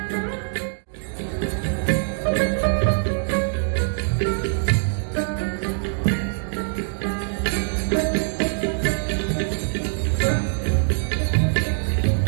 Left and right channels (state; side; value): silent; left; digital silence